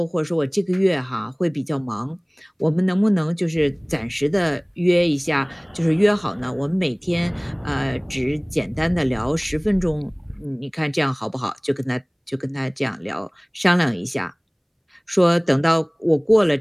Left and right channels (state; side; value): identical; both; correlation 1.00